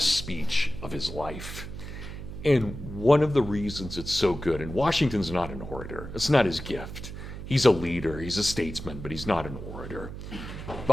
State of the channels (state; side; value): noise; right; hum, 10 dB below the sound